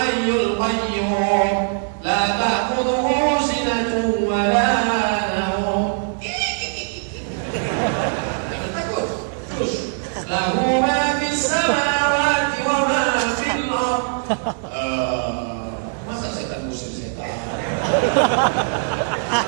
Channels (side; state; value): left; silent; digital silence